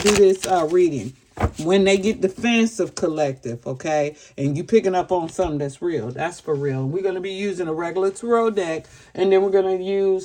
this reading. When they get defensive collective, okay, and you picking up on something that's real, that's for real. We're going to be using a regular tarot deck, and then we're going to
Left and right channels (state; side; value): identical; both; correlation 1.00